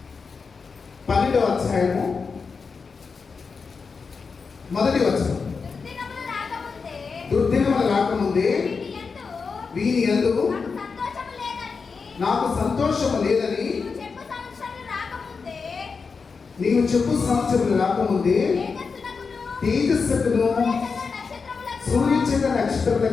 12వ అధ్యాయము 1వ వచనం. దుర్దినములు రాకముందే వీని యందు నాకు సంతోషము లేదని నీవు చెప్పు సంవత్సరములు రాకముందే తేజస్సుకును సూర్యచంద్ర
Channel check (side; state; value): right; quieter; 5.1 dB